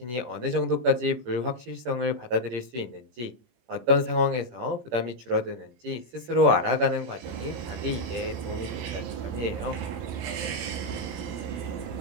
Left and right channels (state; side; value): late; left; 17 ms